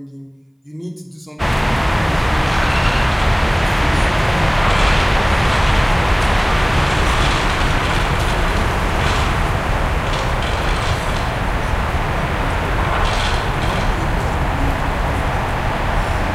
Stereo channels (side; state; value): both; identical; correlation 1.00